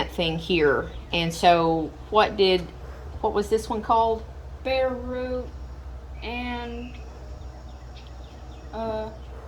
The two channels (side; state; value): both; identical; correlation 1.00